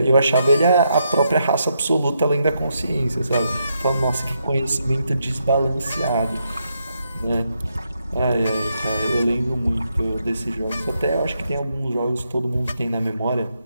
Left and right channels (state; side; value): inverted; both; correlation -0.80